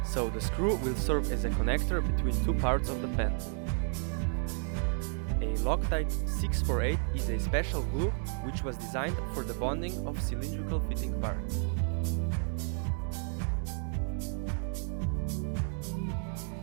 so the screw will serve as a connector between two parts of the pen. A Loctite 648 is a special glue which was designed for the bonding of cylindrical fitting parts.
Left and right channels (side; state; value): left; silent; 56 dB below the other